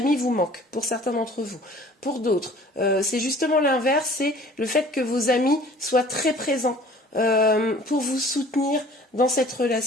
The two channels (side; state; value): both; normal; correlation 0.50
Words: vous manquent, pour certains d'entre vous. Pour d'autres, c'est justement l'inverse, c'est le fait que vos amis soient très présents pour vous soutenir dans cette